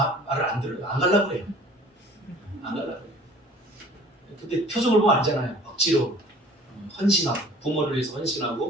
안 들어요. 안 가려고 그래요. 안 가려고 그래요. 근데 표정을 보면 알잖아요. 억지로 헌신하고, 부모를 위해서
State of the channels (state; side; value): normal; both; correlation 0.49